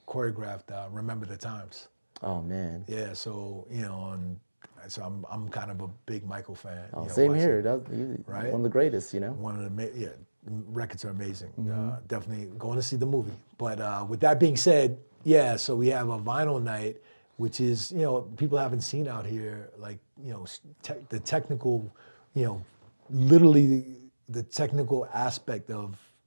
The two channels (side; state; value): both; inverted; correlation -1.00